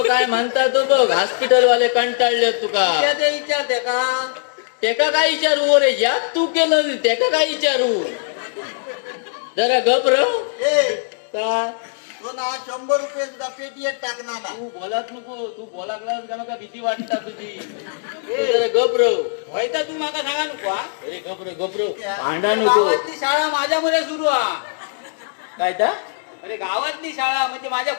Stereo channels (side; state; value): right; silent; digital silence